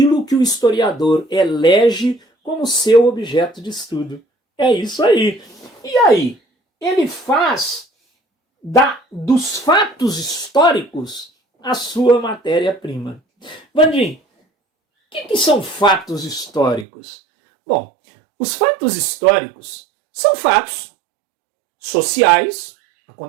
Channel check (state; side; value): drops out; left; at 16.9 s